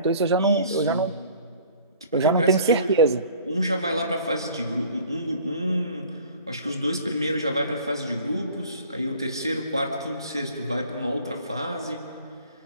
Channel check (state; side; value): inverted; both; correlation -0.50